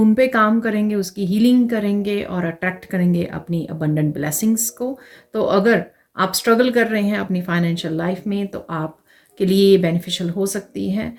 पे काम करेंगे, उसकी हीलिंग करेंगे और अट्रैक्ट करेंगे अपनी अबंडेंट ब्लेसिंग्स को। तो अगर आप स्ट्रगल कर रहे हैं अपनी फाइनेंशियल लाइफ में तो आपके लिए ये बेनिफिशियल हो सकती है।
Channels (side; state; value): both; identical; correlation 1.00